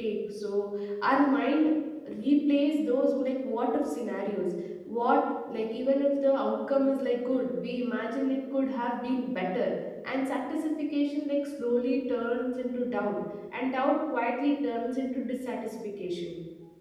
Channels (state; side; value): identical; both; correlation 1.00